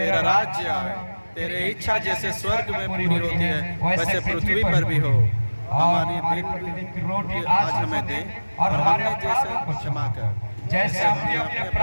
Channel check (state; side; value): inverted; both; correlation -1.00